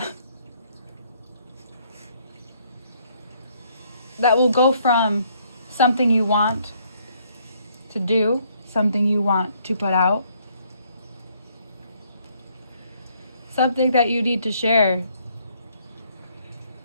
will go from something you want to do, something you want to put out, something that you need to share.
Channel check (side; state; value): both; inverted; correlation -0.68